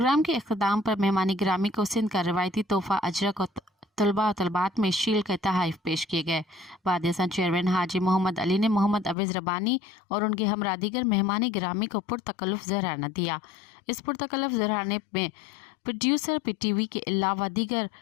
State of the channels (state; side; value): drops out; right; at 9.2 s